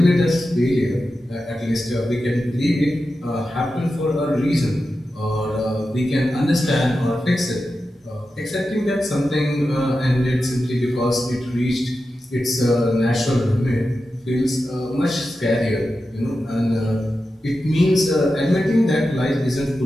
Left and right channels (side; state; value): both; normal; correlation 0.91